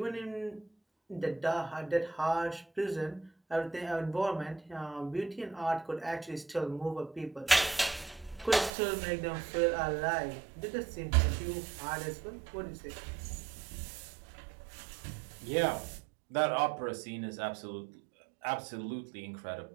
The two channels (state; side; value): drops out; left; at 8.7 s